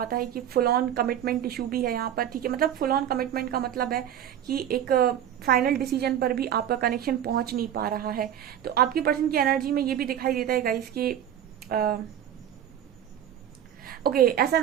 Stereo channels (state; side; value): quieter; left; 10.3 dB